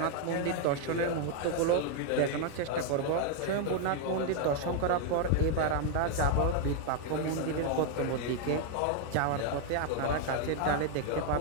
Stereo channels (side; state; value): both; different; correlation 0.00